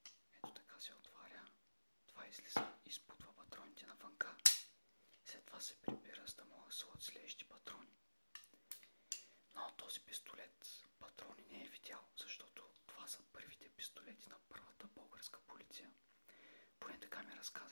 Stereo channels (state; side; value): inverted; both; correlation -1.00